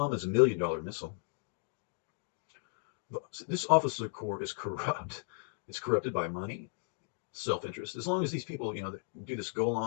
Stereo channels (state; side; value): silent; right; 54 dB below the other